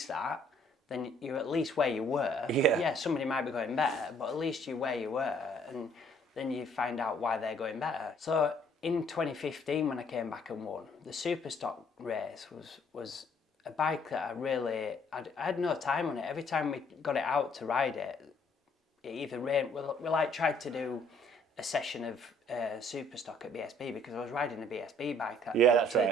that, then you're at least where you were. Yeah, somebody might be going better, but at least you're where you were, and then you find out why they're going better. So in 2015, when I came back and won, the Superstock race was a bike that I had no time on it. Every time we got it out to ride it, it either rained. We like tried to do a session of Superstock at BSB, because I was riding a BSB bike at TT. Yeah.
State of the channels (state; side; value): normal; both; correlation 0.62